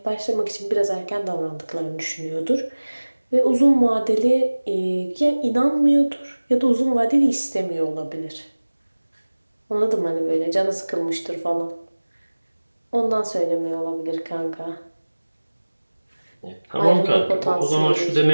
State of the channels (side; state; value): both; inverted; correlation -1.00